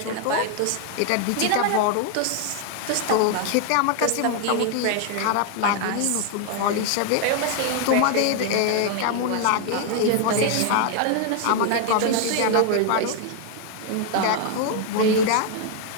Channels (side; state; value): both; different; correlation 0.00